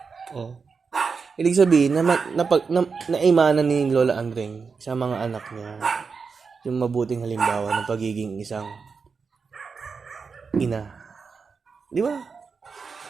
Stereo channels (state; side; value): quieter; left; 5.2 dB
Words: Oh. Ibig sabihin, naimanan ni Lola Andring sa mga anak niya yung mabuting halimbawa ng pagiging isang ina. Di ba?